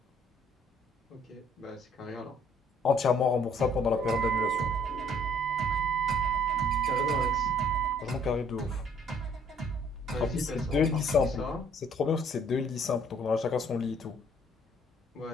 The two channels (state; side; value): normal; both; correlation 0.61